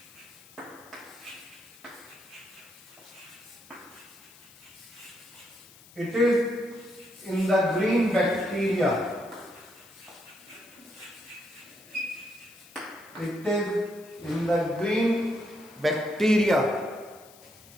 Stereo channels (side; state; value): left; noise; hiss, 23 dB below the sound